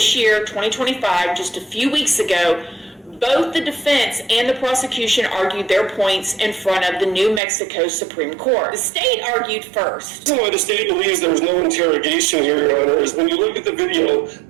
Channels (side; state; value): left; drops out; at 7.4 s